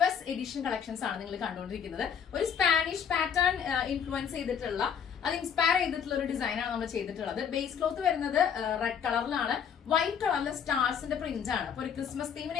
എഡിഷൻ കളക്ഷൻസ് ആണ് നിങ്ങൾ കണ്ടുകൊണ്ടിരിക്കുന്നത്. ഒരു സ്പാനിഷ് പാറ്റേൺ ഇൻഫ്ലുവൻസ് ചെയ്തിട്ടുള്ള, അത് ഇൻസ്പയർ ചെയ്തിട്ടുള്ള ഒരു ഡിസൈൻ ആണ് നമ്മൾ ചെയ്തിട്ടുള്ളത്. ബേസ് ക്ലോത്ത് വരുന്നത് റെഡ് കളറിലാണ്. വൈറ്റ് കളറിലെ സ്റ്റാർസിന്റെ പ്രിന്റ് ആണ്. അപ്പൊ ഒരു ക്രിസ്മസ്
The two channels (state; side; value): quieter; right; 7.7 dB